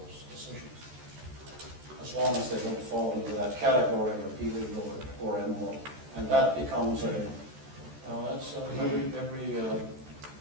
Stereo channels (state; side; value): late; left; 14 ms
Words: decisions, as long as they don't fall into that category of illegal or immoral. And that becomes that's every